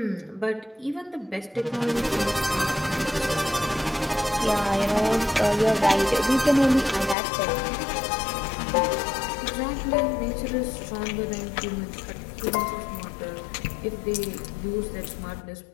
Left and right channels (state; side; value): drops out; right; at 7.2 s